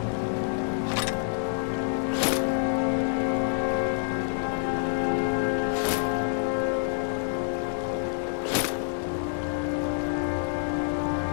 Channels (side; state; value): right; silent; digital silence